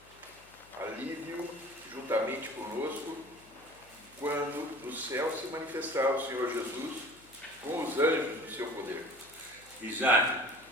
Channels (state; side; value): noise; left; hum, 26 dB below the sound